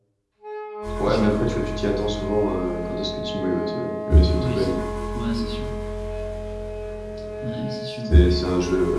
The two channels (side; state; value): both; identical; correlation 1.00